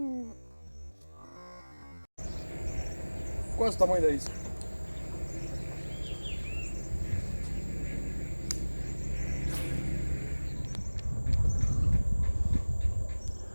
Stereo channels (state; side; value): inverted; both; correlation -1.00